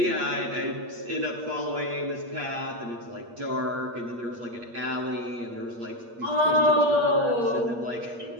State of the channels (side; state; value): left; late; 8.5 ms